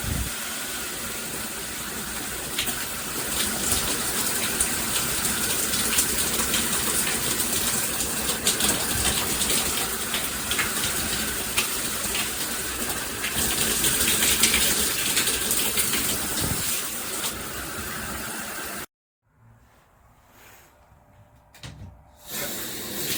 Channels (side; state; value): both; identical; correlation 1.00